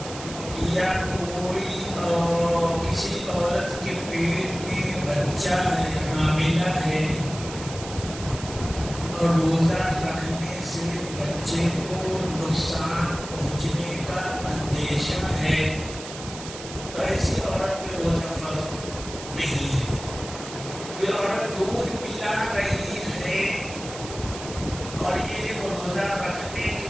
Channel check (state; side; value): noise; right; hiss, 12 dB below the sound